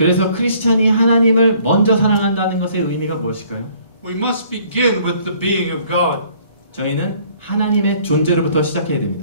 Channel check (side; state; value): both; inverted; correlation -0.59